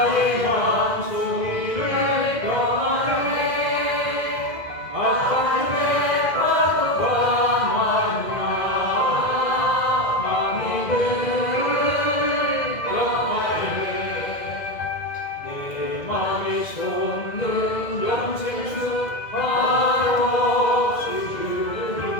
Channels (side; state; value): right; late; 2.0 ms